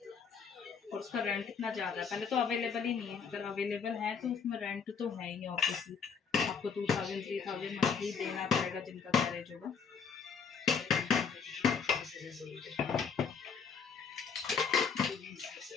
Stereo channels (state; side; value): quieter; right; 6.1 dB